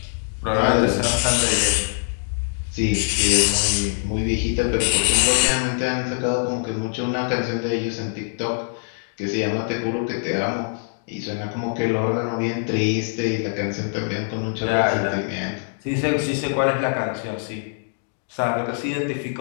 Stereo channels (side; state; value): right; silent; digital silence